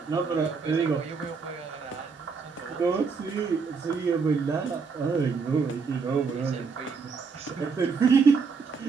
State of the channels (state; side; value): quieter; left; 5.1 dB